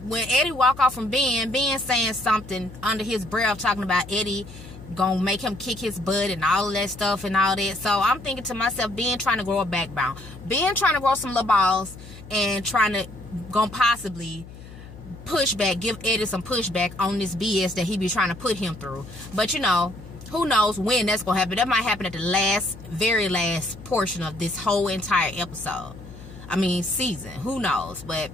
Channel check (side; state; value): left; noise; hum, 16 dB below the sound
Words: When Eddie walk off from Ben saying something under his breath, talking about Eddie gonna make him kick his butt and all of that stuff and all that. So I'm thinking to myself, Ben trying to grow a backbone, Ben trying to grow some little balls, and trying to gonna possibly pushback, give Eddie some pushback on this BS that he be trying to put him through. But, you know, who knows when that's gonna happen. That might happen at the very last portion of this whole entire episode. Season. Who knows? But